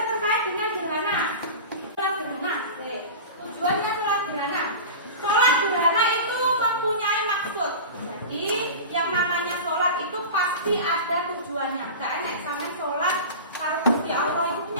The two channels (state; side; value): inverted; both; correlation -0.31